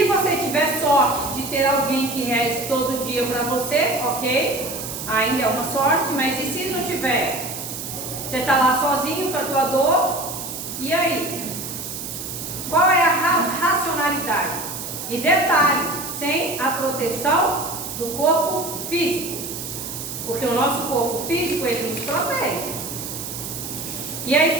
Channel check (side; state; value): right; noise; hiss, 7 dB below the sound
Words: você tiver sorte de ter alguém que reze todo dia para você, ok? Ainda é uma sorte, mas e se não tiver? Você está lá sozinho com a tua dor, e aí? Qual é a racionalidade? E detalhe, sem a proteção do corpo físico. Porque o nosso corpo físico, ele nos protege. E aí,